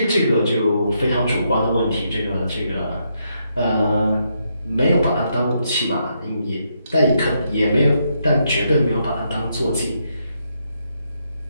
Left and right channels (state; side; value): inverted; both; correlation -0.78